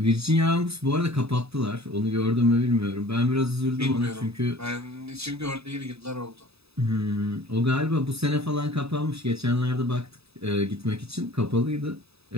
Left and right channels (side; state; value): left; late; 0.78 ms